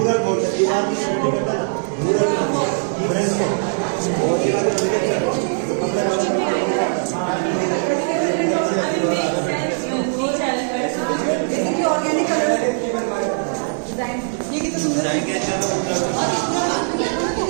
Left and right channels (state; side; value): silent; left; digital silence